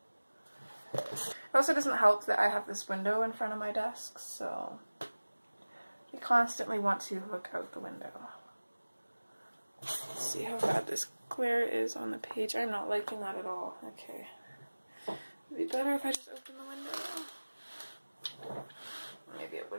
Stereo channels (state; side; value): inverted; both; correlation -1.00